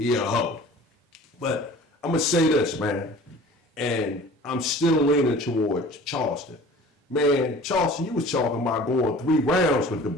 a hoe. But I'm gonna say this, man, and I'm still leaning towards Charleston. Man, Charleston, you was talking about going 3 rounds with the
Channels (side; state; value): both; normal; correlation 0.44